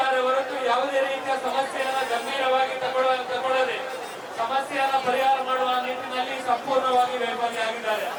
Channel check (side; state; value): both; identical; correlation 1.00